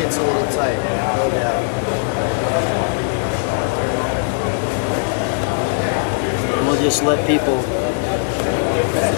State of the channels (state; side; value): silent; right; 64 dB below the other